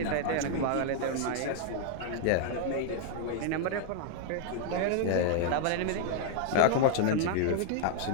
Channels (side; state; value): both; different; correlation 0.00